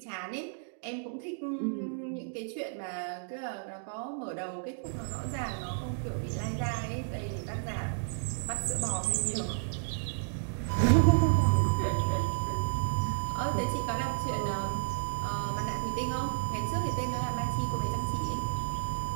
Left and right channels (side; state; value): left; silent; digital silence